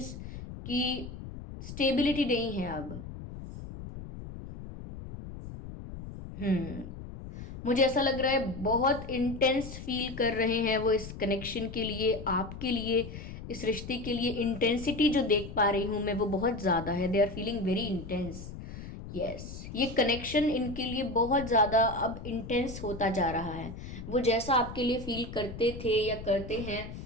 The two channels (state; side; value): noise; left; rumble, 11 dB below the sound